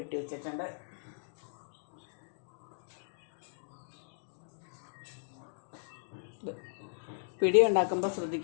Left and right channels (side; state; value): right; silent; digital silence